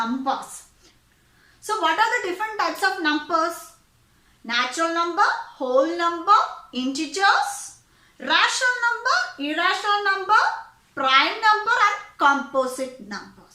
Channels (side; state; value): both; identical; correlation 1.00